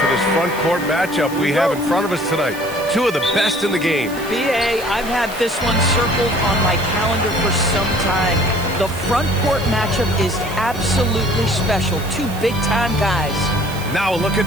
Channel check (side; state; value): right; noise; hiss, 16 dB below the sound